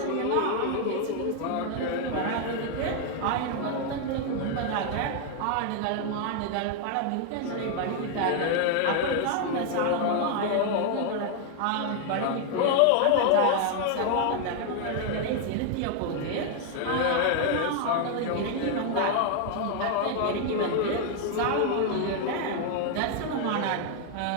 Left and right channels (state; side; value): different; both; correlation 0.00